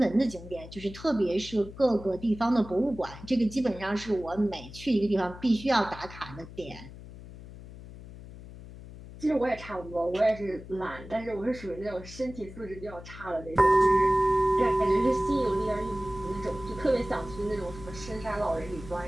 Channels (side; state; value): left; noise; hum, 15 dB below the sound